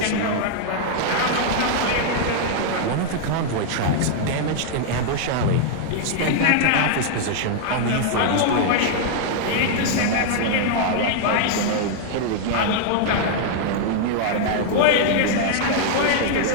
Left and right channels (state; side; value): different; both; correlation -0.01